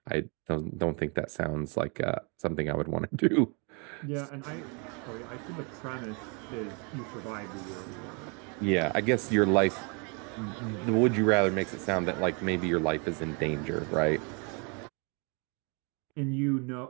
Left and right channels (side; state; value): left; quieter; 34.0 dB